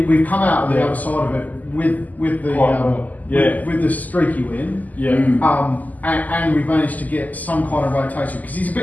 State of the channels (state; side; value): late; right; 0.079 ms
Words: come out of the other side of it with the streaky win. Yeah. And we've managed to get some kind of rotation because he's a